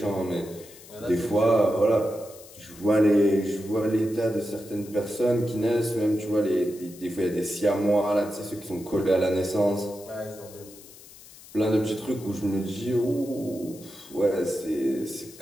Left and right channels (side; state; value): left; noise; hiss, 20 dB below the sound